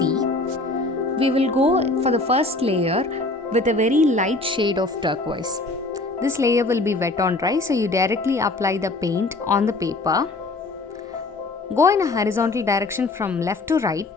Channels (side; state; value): right; quieter; 3.1 dB